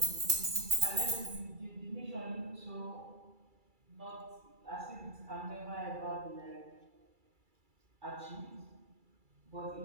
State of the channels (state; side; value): late; left; 2.3 ms